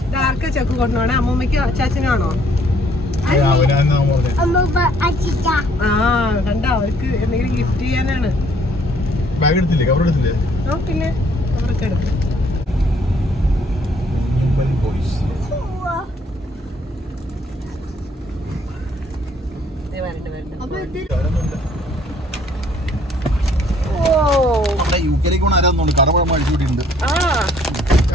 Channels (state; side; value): normal; both; correlation 0.63